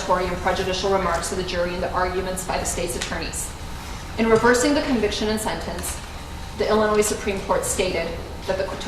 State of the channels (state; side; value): identical; both; correlation 1.00